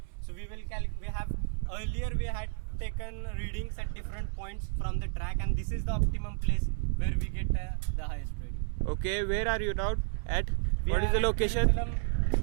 So we will earlier we had taken readings at different points from the track, and this is the optimum place where we get the highest reading. Okay. Where are you now at? We What is the location?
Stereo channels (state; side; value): silent; left; 57 dB below the other